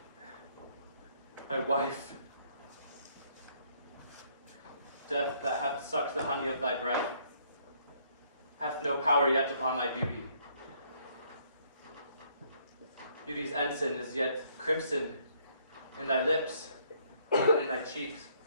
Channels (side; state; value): both; inverted; correlation -0.66